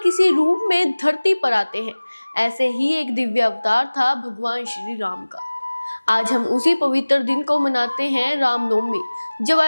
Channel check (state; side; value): inverted; both; correlation -1.00